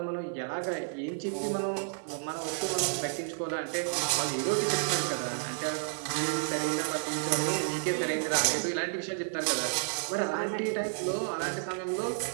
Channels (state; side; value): silent; left; digital silence